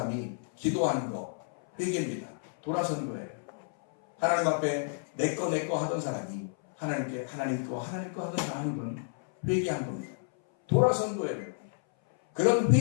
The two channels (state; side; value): silent; right; 57 dB below the other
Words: 기도하는 거, 회개입니다. 돌아서는 거예요. 하나님 앞에 내 거 하던 사람이 하나님께 하나님 거 하던 건 회개한 겁니다. 돌아선 거예요. 그런